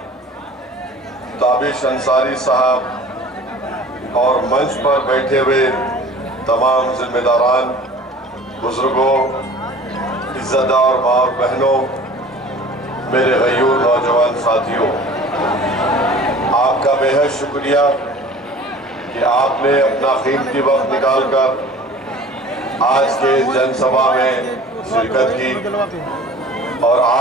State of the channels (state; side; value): normal; both; correlation 0.45